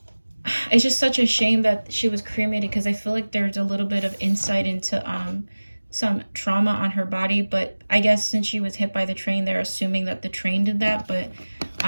it's just such a shame that she was cremated, because I feel like there's a little bit of insight into some trauma on her body. But I guess since she was hit by the train, they're assuming that the train did that. But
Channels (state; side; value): inverted; both; correlation -1.00